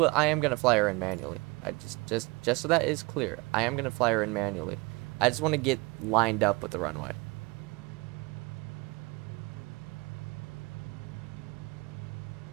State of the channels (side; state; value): left; quieter; 26.0 dB